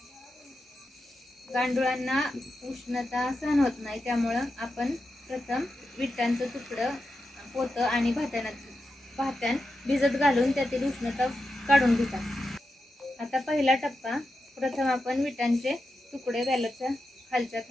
गांडुळांना उष्णता सहन होत नाही, त्यामुळे आपण प्रथम विटांचं तुकडं पोतं आणि भात्यान भिजत घालून त्यातील उष्णता काढून घेतात। आता पहिला टप्पा, प्रथम आपण विटांचे तुकडे बॅलरच्या खालच्या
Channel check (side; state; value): both; normal; correlation 0.89